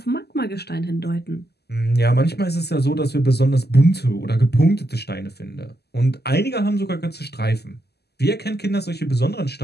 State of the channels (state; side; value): late; right; 0.47 ms